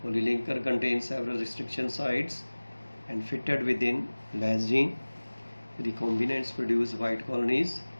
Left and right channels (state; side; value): inverted; both; correlation -1.00